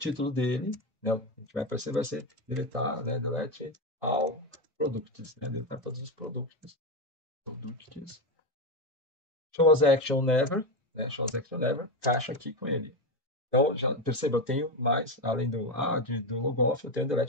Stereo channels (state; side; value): normal; both; correlation 0.13